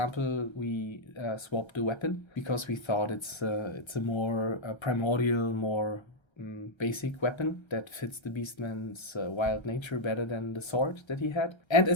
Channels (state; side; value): late; right; 1.3 ms